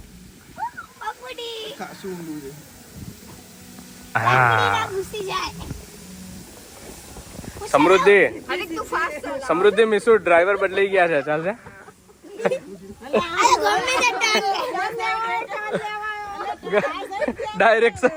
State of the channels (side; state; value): both; identical; correlation 1.00